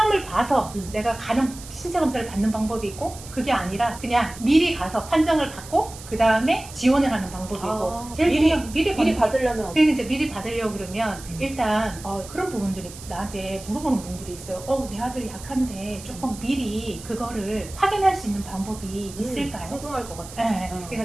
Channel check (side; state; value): right; noise; hiss, 16 dB below the sound